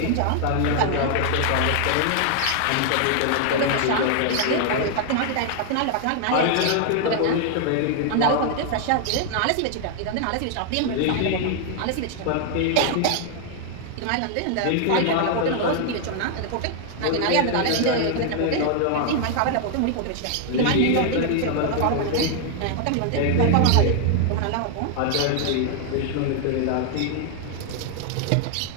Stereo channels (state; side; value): different; both; correlation 0.00